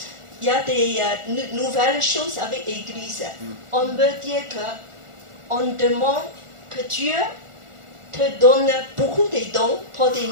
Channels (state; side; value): late; left; 1.4 ms